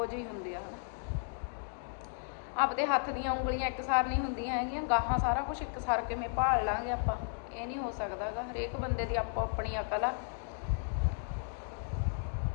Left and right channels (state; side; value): silent; right; digital silence